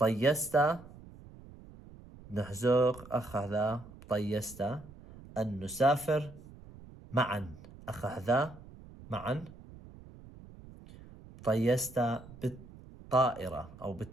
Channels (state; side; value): noise; right; rumble, 19 dB below the sound